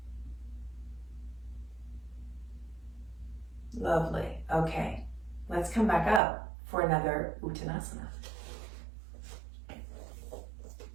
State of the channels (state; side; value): drops out; left; at 6.2 s